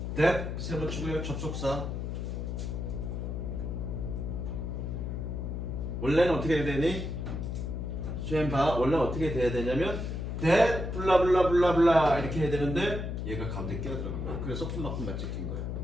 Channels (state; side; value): noise; left; hum, 4 dB below the sound